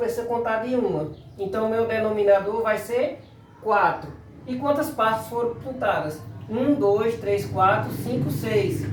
contar de uma. Então o meu denominador vai ser 4. E quantas partes foram pintadas? 1, 2, 3, 4, 5, 6.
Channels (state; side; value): identical; both; correlation 1.00